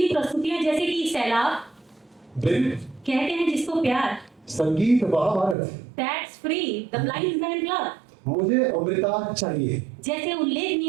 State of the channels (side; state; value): left; drops out; at 5.6 s